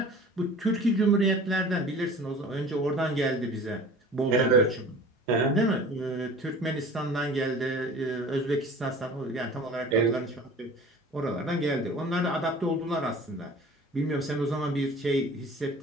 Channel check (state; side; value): normal; both; correlation 0.43